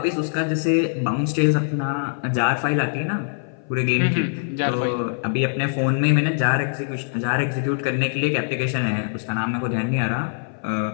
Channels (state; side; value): silent; right; 58 dB below the other